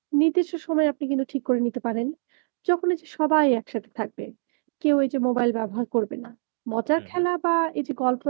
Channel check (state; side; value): silent; left; digital silence